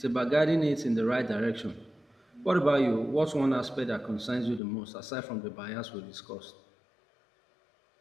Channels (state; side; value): drops out; right; at 4.6 s